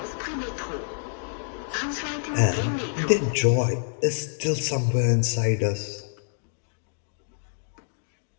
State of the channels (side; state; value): right; silent; digital silence